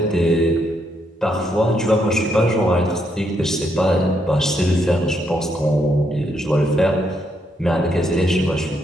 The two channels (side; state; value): both; normal; correlation 0.76